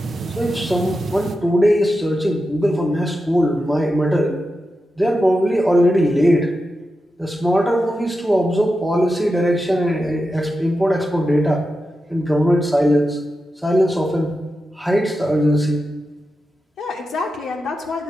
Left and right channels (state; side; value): normal; both; correlation 0.90